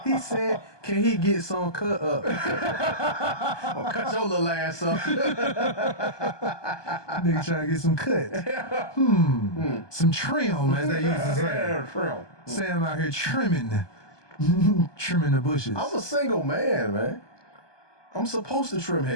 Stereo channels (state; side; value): late; right; 1.2 ms